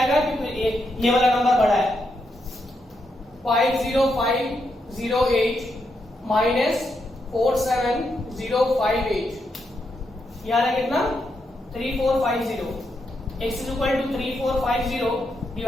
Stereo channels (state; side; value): normal; both; correlation 0.82